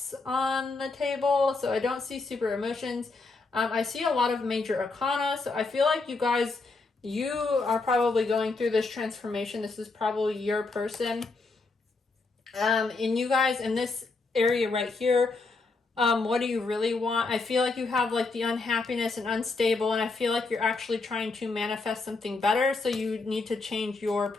on the table, so I don't see super emotions. I see a lot of major arcana, so I feel like you guys, you are probably going through this transformation. This is probably your person. And you guys in this area right here, what do you really want? I feel like you have like the unhappiness and unstable, and I feel like you're actually trying to manifest something better, so you need to change your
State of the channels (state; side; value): quieter; right; 3.8 dB